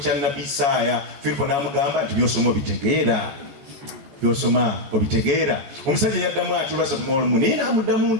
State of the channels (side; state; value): left; late; 14 ms